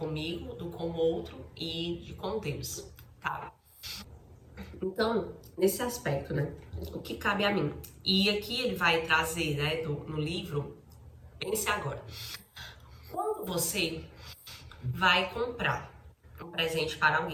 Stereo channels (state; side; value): identical; both; correlation 1.00